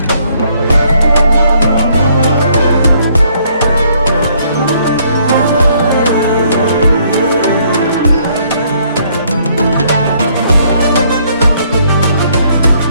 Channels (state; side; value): inverted; both; correlation -0.67